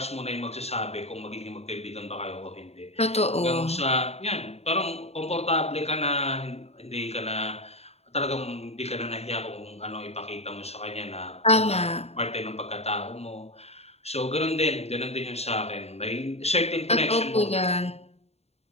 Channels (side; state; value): right; late; 0.30 ms